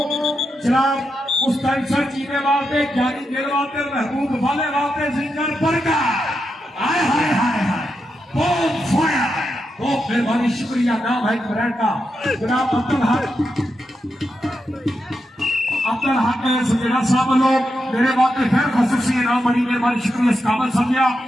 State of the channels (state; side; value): normal; both; correlation 0.86